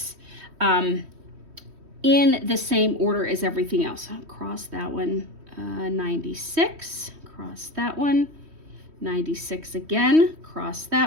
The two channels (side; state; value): left; late; 3.1 ms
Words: in the same order as everything else. I'll cross that one, 96, cross that one, 96 again, cross